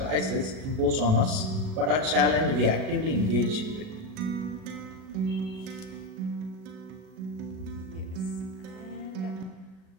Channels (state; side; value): late; left; 37 ms